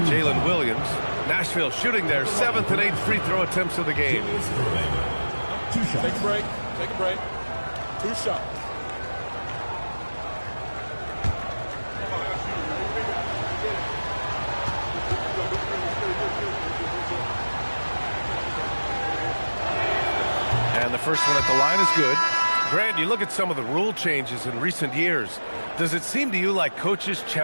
Jalen Williams. Nashville shooting their 7th and 8th free throw attempts of the game. Take a break. Take a break. 2 shots. And the first one at the line is good. Grant, you look at some of the rule changes in recent years. Does it seem to you like coaches'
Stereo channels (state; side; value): inverted; both; correlation -1.00